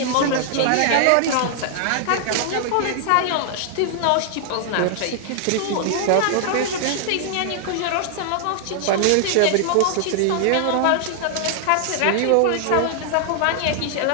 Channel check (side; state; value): both; different; correlation -0.01